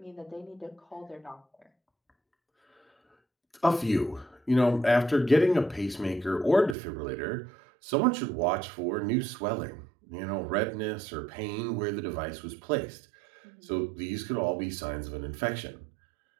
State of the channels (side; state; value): left; drops out; at 6.8 s